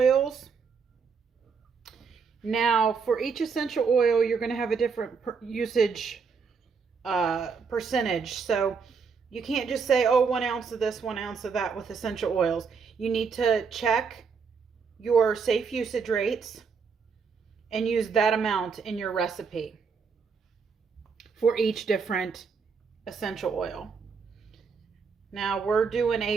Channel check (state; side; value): quieter; left; 5.6 dB